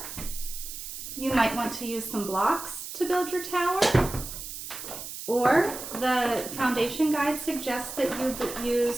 You might want to use some blocks to build your tower. Or the foundation guide suggests that you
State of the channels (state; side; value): noise; right; hiss, 9 dB below the sound